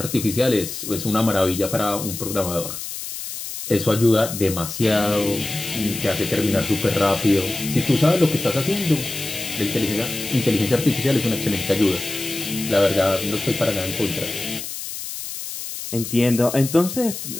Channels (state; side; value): noise; left; hiss, 8 dB below the sound